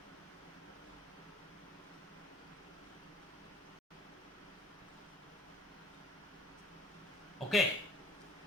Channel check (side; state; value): both; normal; correlation 0.54